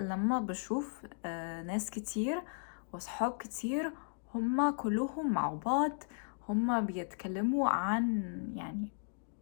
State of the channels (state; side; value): silent; right; digital silence